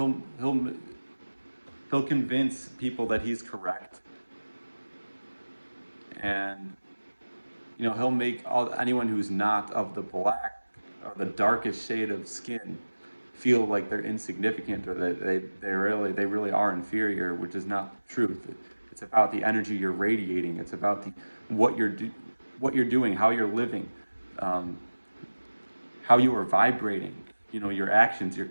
convince people that he's correct, and he'll make anyone who's not of the black or the darkest shade of skin feel like they're insignificant, or that they really are inferior, which is not the truth. It's about the energy you're radiating. It's about what you're doing, how you're living, how you are vibrating. Your actions, your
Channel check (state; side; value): inverted; both; correlation -1.00